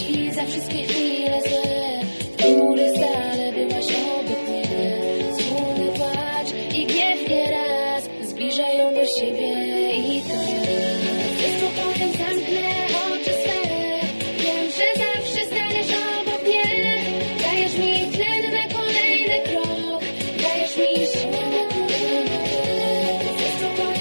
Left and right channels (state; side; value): inverted; both; correlation -1.00